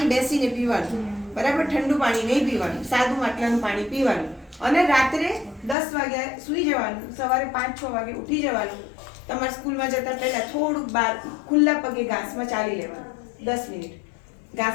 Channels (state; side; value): drops out; right; at 5.8 s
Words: બેસીને પીવાનું, બરાબર, ઠંડુ પાણી નહીં પીવાનું, સાદું માટલાનું પાણી પીવાનું. અને રાત્રે 10 વાગ્યા સૂઈ જવાનું, સવારે 5-6 વાગે ઉઠી જવાનું. તમારે સ્કૂલમાં જતા પહેલા થોડુંક બહાર ખુલ્લા પગે ઘાસમાં ચાલી લેવાનું 10 મિનિટ.